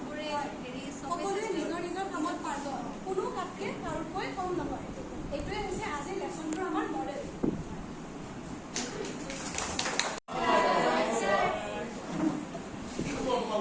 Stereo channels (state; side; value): identical; both; correlation 1.00